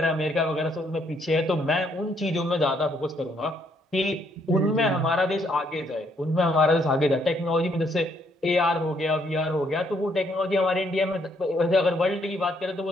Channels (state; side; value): normal; both; correlation 0.70